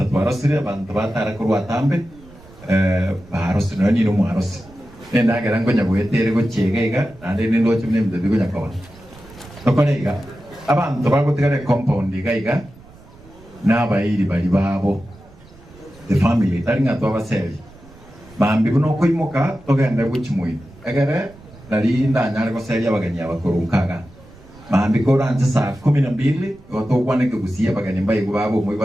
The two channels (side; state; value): right; noise; rumble, 23 dB below the sound